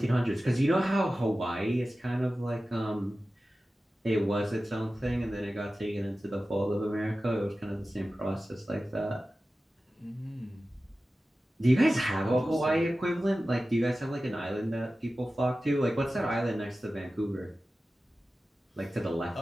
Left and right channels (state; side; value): normal; both; correlation 0.95